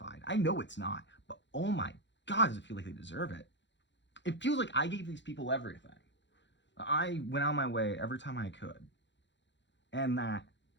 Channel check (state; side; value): late; right; 0.52 ms